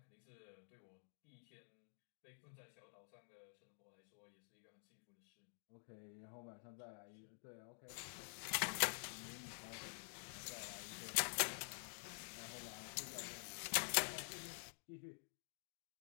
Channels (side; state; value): right; silent; digital silence